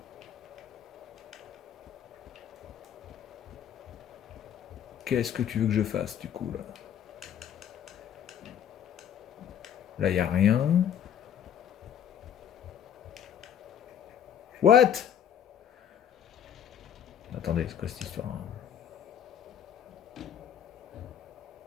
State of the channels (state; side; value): quieter; right; 9.3 dB